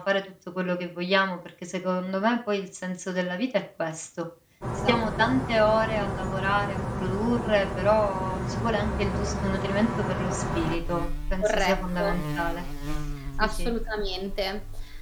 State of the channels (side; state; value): both; identical; correlation 1.00